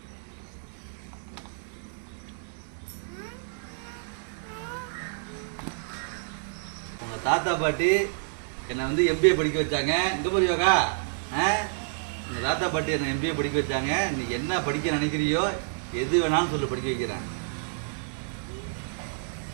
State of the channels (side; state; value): left; silent; digital silence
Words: உங்கள் தாத்தா பாட்டி என்னை வந்து எம்பிஏ படிக்க வச்சாங்க இங்கே போய் யோகா உங்கள் தாத்தா பாட்டி என்னை எம்பிஏ படிக்க வச்சாங்க நீ என்ன படிக்க நினைக்கிறியோ எது வேணாலும் சொல்லு படிக்க வைக்கிறேன்